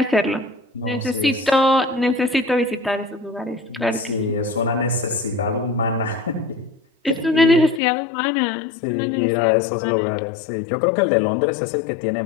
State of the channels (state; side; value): drops out; right; at 7.8 s